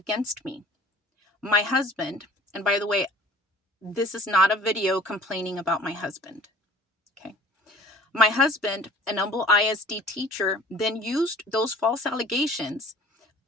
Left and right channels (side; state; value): both; normal; correlation 0.48